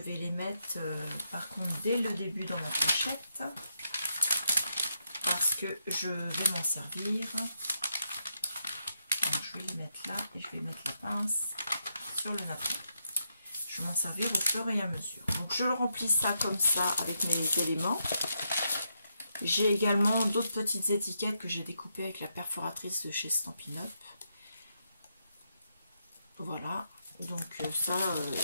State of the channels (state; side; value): inverted; both; correlation -0.82